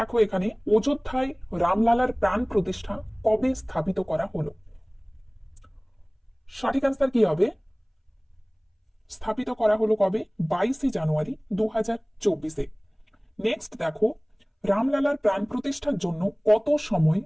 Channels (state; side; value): identical; both; correlation 1.00